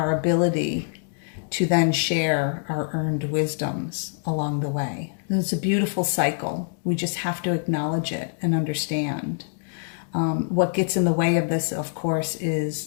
ability to then share our earned wisdoms along the way. And it's a beautiful cycle. We just have to acknowledge it and understand. What gets in the way of this, of course,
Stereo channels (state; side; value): silent; right; digital silence